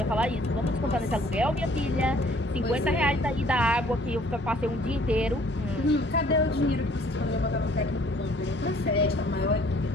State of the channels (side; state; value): both; normal; correlation 0.57